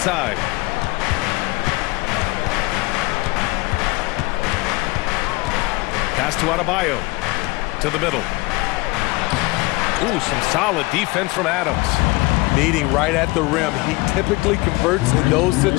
Pass to Adebayo. To the middle. Ooh, some solid defense from Adams. Meeting right at the rim. He typically converts in those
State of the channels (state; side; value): quieter; right; 23.5 dB